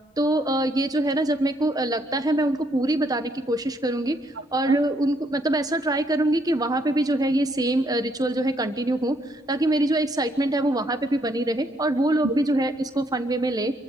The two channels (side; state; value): both; normal; correlation 0.71